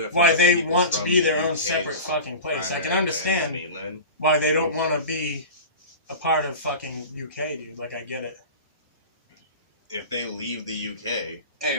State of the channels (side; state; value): both; inverted; correlation -0.32